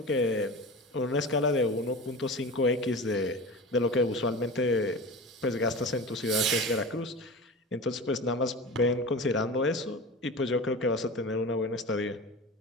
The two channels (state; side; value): normal; both; correlation 0.31